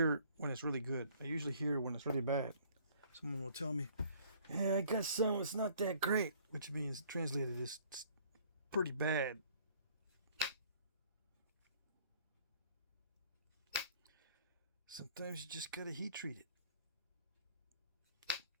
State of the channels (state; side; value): inverted; both; correlation -0.57